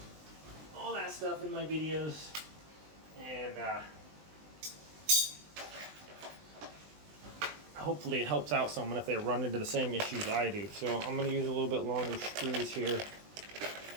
all that stuff in my videos, and hopefully it helps out someone if they run into the same issues I do. So I'm going to use a little bit longer screws here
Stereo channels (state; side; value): late; left; 20 ms